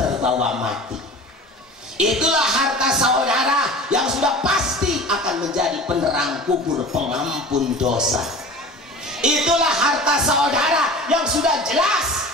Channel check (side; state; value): both; normal; correlation 0.38